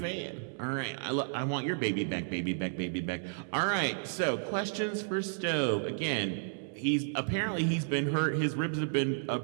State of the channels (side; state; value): left; silent; 56 dB below the other